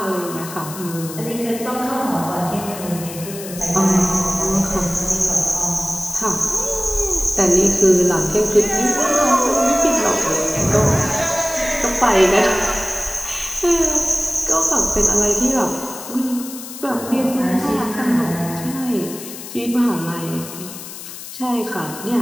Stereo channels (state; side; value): noise; left; hiss, 12 dB below the sound